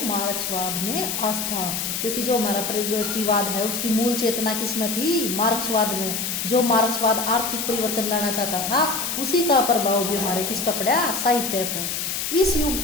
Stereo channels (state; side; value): noise; left; hiss, 2 dB below the sound